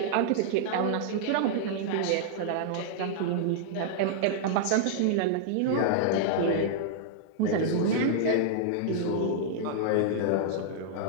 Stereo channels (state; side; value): different; both; correlation -0.01